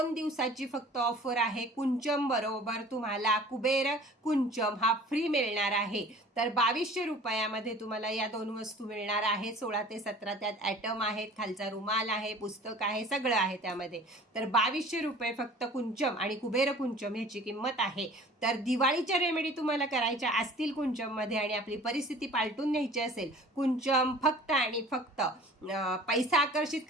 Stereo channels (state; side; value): normal; both; correlation 0.46